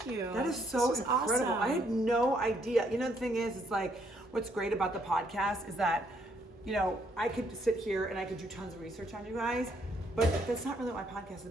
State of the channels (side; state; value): both; normal; correlation 0.71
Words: That is so This was incredible. awesome. I had no idea. You know, the thing is, it's like, what's great about the podcast is that, you know, I could sit here and I could do tons of research on you guys, but that's not really what my podcast is